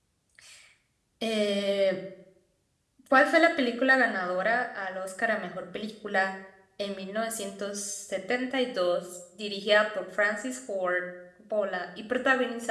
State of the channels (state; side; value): identical; both; correlation 1.00